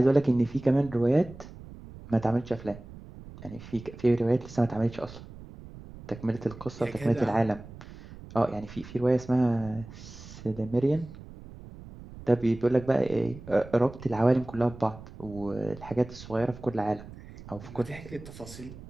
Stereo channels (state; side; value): noise; right; rumble, 16 dB below the sound